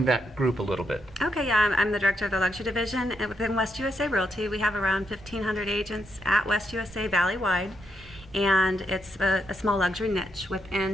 that group a little bit. Okay, yeah, I'm the director of the luxury division, and within West USA Realty, we have around 1,500 agents at West USA Valley-wide, and it's a small luxury niche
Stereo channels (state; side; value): normal; both; correlation 0.80